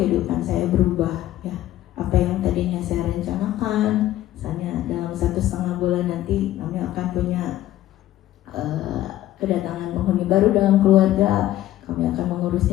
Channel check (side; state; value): right; quieter; 13.9 dB